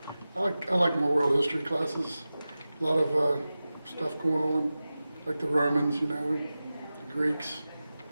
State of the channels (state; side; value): inverted; both; correlation -0.95